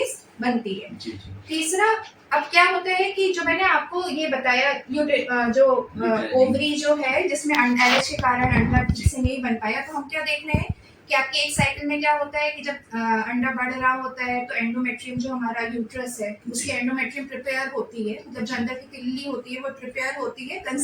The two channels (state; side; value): identical; both; correlation 1.00